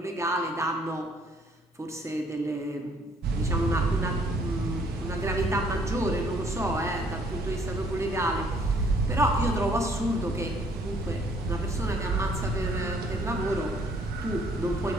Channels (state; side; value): normal; both; correlation 0.63